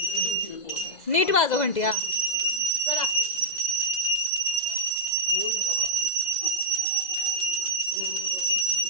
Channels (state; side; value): late; right; 2.0 ms